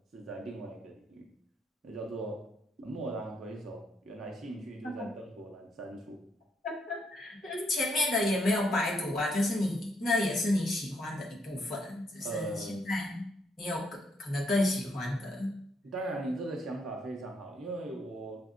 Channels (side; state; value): both; normal; correlation 0.74